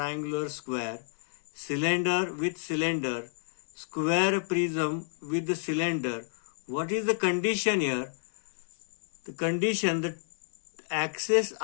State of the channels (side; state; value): right; silent; 58 dB below the other